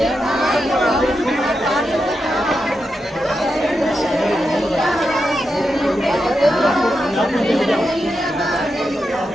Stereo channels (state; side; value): normal; both; correlation 0.87